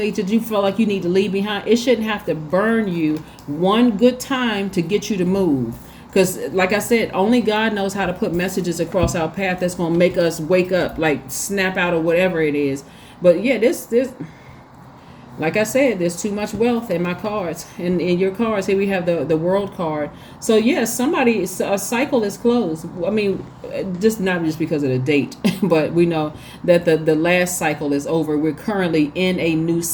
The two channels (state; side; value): identical; both; correlation 1.00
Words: that you feel like you need to leave behind, it shouldn't have to burn you one good time to get you to move. Because like I said, only God knows how to put messages across our path that's going to make us wake up, like snap out of whatever it is. But yeah, this like I said, there's too much wealth in my cards. And in your cards, here we have the World card. So yes, a cycle is closed. I mean, not just because of the date, but we know that the last cycle is over. We're currently in a new